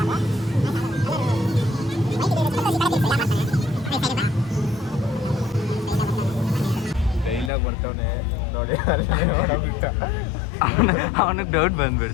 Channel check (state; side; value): drops out; right; at 7.5 s